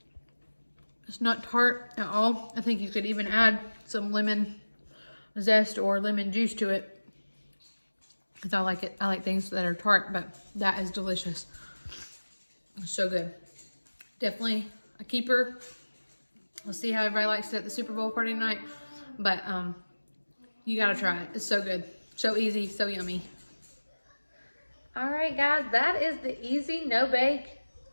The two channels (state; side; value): inverted; both; correlation -1.00